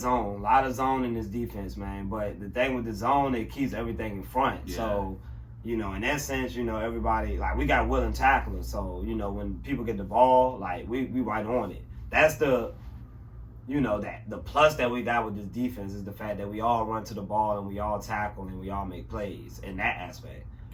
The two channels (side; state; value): both; identical; correlation 1.00